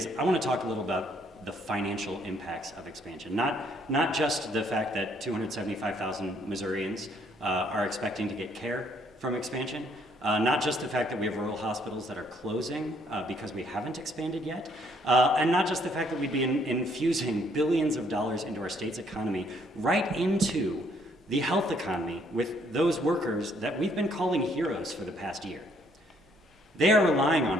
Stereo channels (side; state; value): both; normal; correlation 0.67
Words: I want to talk a little about the financial impacts of expansion. Not just the fact that 275,000 Missourians are expecting to get care from expansion, Not just the fact that we have rural hospitals that are closing because we haven't expanded yet, and not just the fact that we'd be infusing billions of dollars into our state's economy right into the health economy with those workers that we've been calling heroes for the past year. They are relying